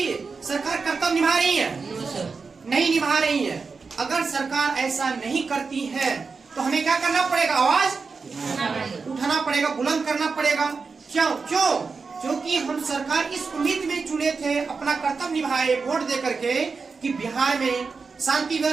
सरकार कर्तव्य निभा रही है, नहीं निभा रही है। अगर सरकार ऐसा नहीं करती है तो हमें क्या करना पड़ेगा, आवाज उठाना पड़ेगा, बुलंद करना पड़ेगा। क्यों, क्योंकि हम सरकार इस उम्मीद में चुने थे, अपना कर्तव्य निभाए वोट दे करके, कि बिहार में शांति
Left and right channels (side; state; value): left; quieter; 4.7 dB